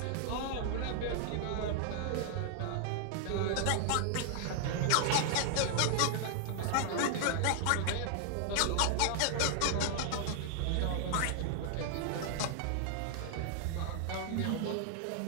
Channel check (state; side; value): different; both; correlation 0.00